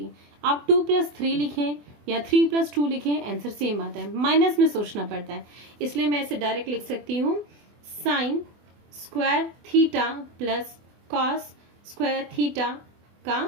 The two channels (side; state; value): left; late; 24 ms